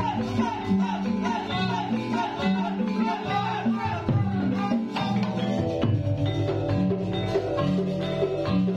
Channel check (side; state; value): both; identical; correlation 1.00